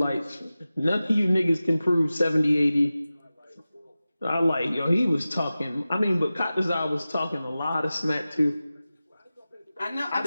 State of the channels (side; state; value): both; inverted; correlation -0.95